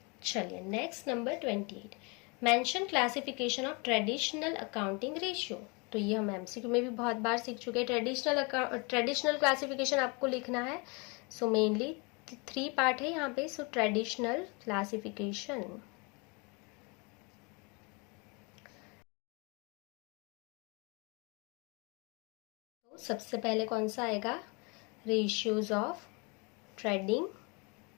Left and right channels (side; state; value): right; quieter; 30.6 dB